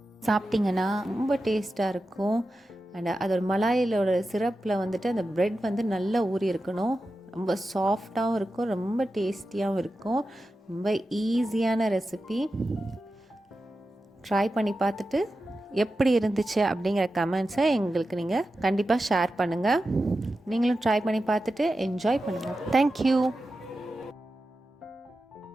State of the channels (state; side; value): normal; both; correlation 0.92